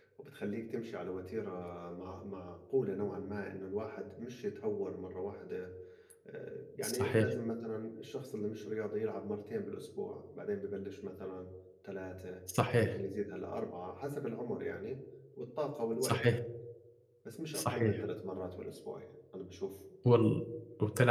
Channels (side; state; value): both; identical; correlation 1.00